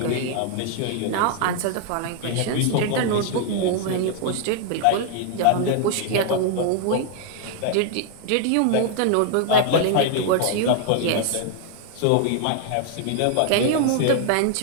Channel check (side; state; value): both; different; correlation 0.00